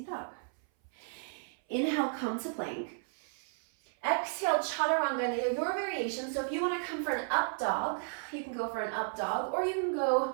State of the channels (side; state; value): left; silent; 56 dB below the other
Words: dog. Inhale, come to plank. Exhale, chaturanga, your variation. So if you want to come for an up dog, you can go for an up dog, or you can go